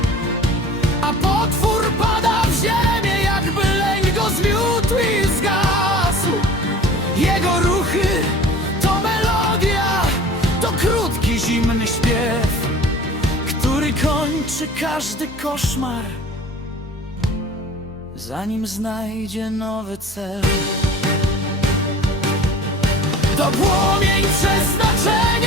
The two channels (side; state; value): both; normal; correlation 0.45